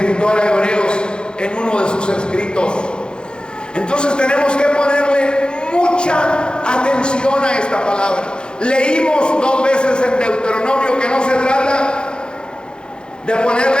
a Hebreos en uno de sus escritos. Entonces tenemos que ponerle mucha atención a esta palabra. Leímos 2 veces en Deuteronomio que no se trata de ponerle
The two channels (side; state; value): right; late; 0.049 ms